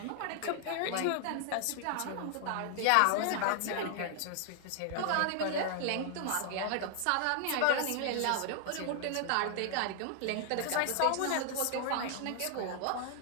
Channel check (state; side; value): different; both; correlation 0.00